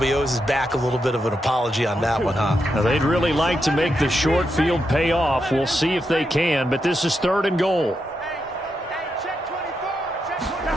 owes his back a little bit of an apology on that one, huh? Now, they'd really like to make the short field pay off. We'll see if they can, but this is 3rd and goal.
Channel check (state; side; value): normal; both; correlation 0.84